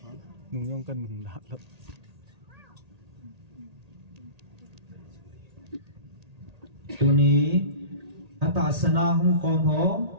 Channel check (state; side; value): late; left; 1.8 ms